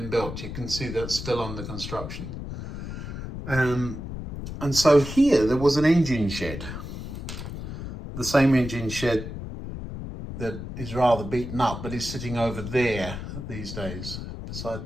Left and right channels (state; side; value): noise; left; rumble, 8 dB below the sound